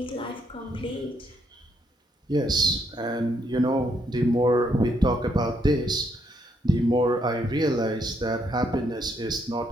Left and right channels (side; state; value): both; normal; correlation 0.74